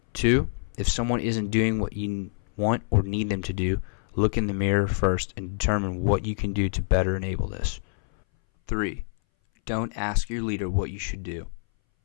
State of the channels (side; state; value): right; silent; 60 dB below the other